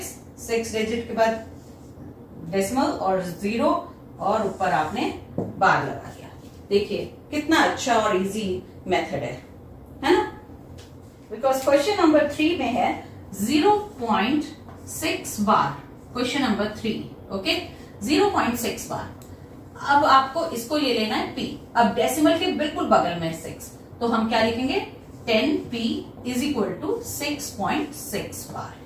6 digit के बाद डेसिमल और 0 और ऊपर आपने बार लगा दिया. देखिए कितना अच्छा और इजी मेथड है ना. बिकॉज क्वेश्चन नंबर 3 में है 0.6 bar. Question number 3. Okay, 0.6 bar. अब आपको इसको ले लेना है p. अब डेसिमल के बिल्कुल बगल में 6, तो हम क्या लिखेंगे, 10p is equal to 6.6 बार.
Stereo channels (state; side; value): identical; both; correlation 1.00